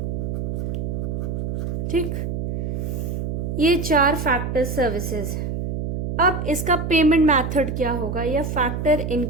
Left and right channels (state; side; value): noise; right; hum, 2 dB below the sound